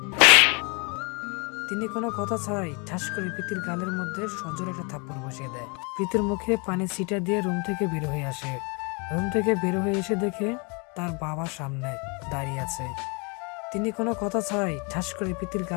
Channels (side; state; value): right; quieter; 31.5 dB